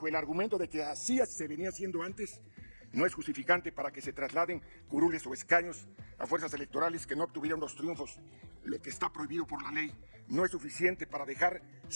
el argumento de que así se venía haciendo antes, no es justificante para que se trasladen curules o escaños a fuerzas electorales que no obtuvieron los triunfos. Lo que está prohibido por la ley no es suficiente para dejar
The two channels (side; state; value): both; inverted; correlation -1.00